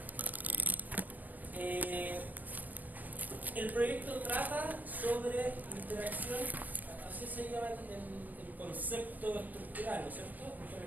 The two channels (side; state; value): left; late; 0.082 ms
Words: El proyecto trata sobre interacción, así se llama el concepto estructural, ¿no es cierto?